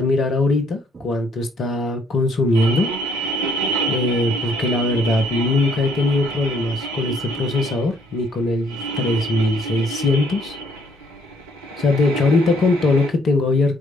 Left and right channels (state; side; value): normal; both; correlation 0.66